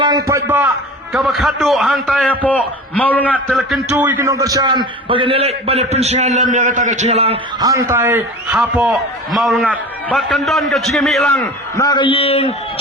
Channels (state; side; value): normal; both; correlation 0.36